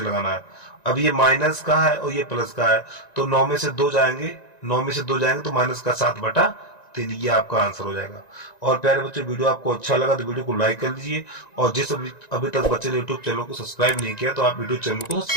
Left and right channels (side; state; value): right; late; 1.9 ms